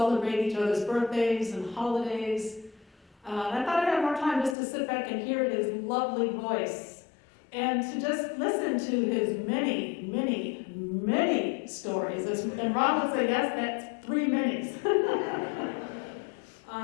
each other's birthdays and holidays. I thought I'd have more time just to sit back and hear his lovely voice and to just listen to his many, many, many stories. And Ron would say, yes, that's 3 minis.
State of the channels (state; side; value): drops out; right; at 4.5 s